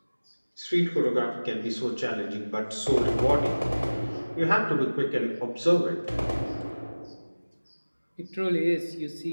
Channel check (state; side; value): inverted; both; correlation -1.00